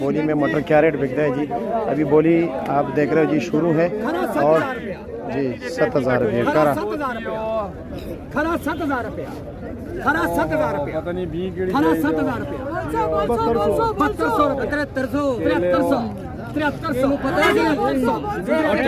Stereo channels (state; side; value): identical; both; correlation 1.00